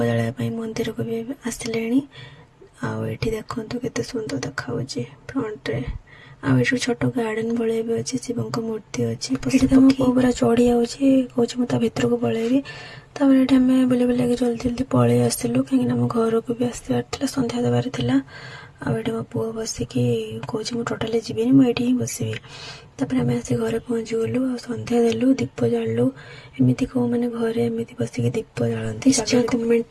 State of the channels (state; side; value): identical; both; correlation 1.00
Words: जलाया मंदिर को भी आसिले। आठी देखु केते सुंदर देखा फ्रंट रे। आठ छोट गार्डन भाई भी अच्छी शिव मूर्ति अच्छी पूरा चढ़ी जाऊँगी कौच मुझे भितर को पलैबी। तापर ये आम बुले बुला जल्दी जल्दी पलि आसलु कहीं घर को भी आसबार संध्या देवार था। आठ मो पुआ बसिकी कौच मुझे टोटाली जीविनी मुझे ही बसबी। तापर आम आसी घर पहुँची गलु आ संध्या देलु दीप जालु एमती कौ मैंने घरे एमती बसिक दीप जालती।